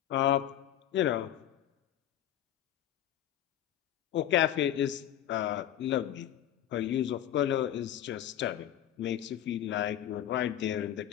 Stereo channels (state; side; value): quieter; right; 11.4 dB